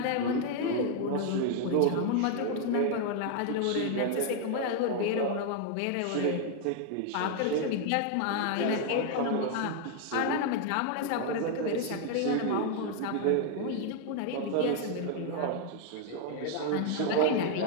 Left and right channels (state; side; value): different; both; correlation 0.00